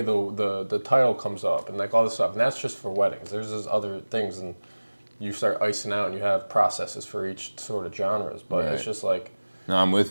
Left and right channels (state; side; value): inverted; both; correlation -1.00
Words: the title comes up, and like all this stuff. And that's just for weddings. There's just other things, and you start icing out, and you have processes for each sort of genres. But it's just like. No, I'm